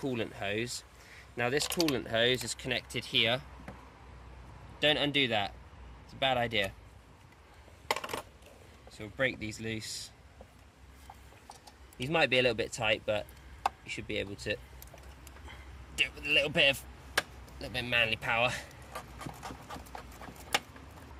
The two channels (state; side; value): identical; both; correlation 1.00